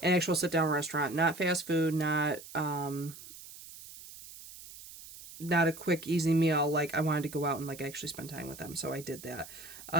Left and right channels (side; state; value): right; noise; hiss, 16 dB below the sound